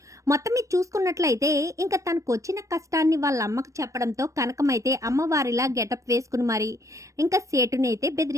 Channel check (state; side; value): late; left; 0.15 ms